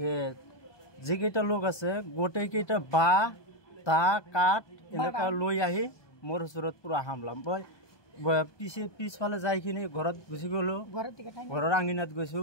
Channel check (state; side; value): late; right; 1.2 ms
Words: যেকেইটা লোক আছে গোটেইকেইটা বা তা কাঠ এনেকুৱা লৈ আহি মোৰ ওচৰত পুৰা হামলাম মই পিছফালে যাইখিনি ঘৰত গুচি গলো ঘৰৰ আঙিনাত গৈছো